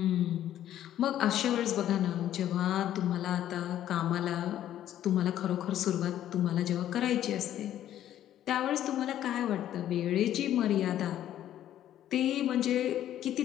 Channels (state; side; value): quieter; right; 11.8 dB